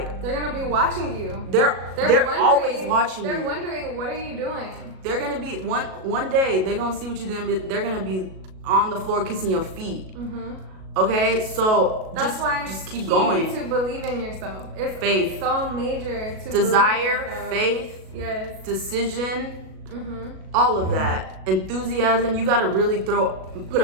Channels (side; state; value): left; late; 37 ms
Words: they're gonna be watching you. They're always watching you. They're wondering, what are you doing? They're gonna be one day. They're gonna see what you're doing. They're gonna be on the floor kissing your feet. Okay, so that's why just keep going. To believe in yourself. It's faith. So major to desire, faith, decision, all of that. Enthusiasm. You gotta really put